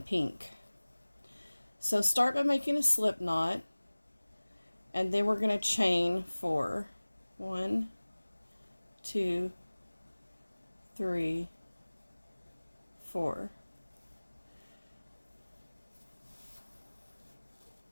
pink. So start by making a slip knot, and then we're going to chain 4. 1, 2, 3, 4.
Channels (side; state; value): both; inverted; correlation -1.00